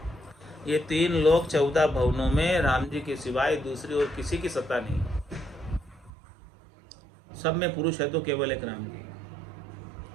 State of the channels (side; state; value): left; drops out; at 6.1 s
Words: ये 3 लोक 14 भवनों में राम जी के सिवाय दूसरी और किसी की सत्ता नहीं। सब में पुरुष है तो केवल एक राम जी।